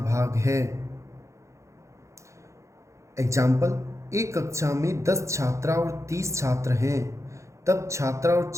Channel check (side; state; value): left; late; 0.14 ms